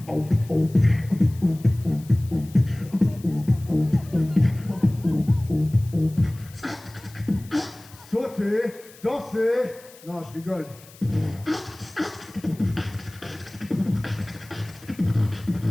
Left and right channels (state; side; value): noise; left; hiss, 22 dB below the sound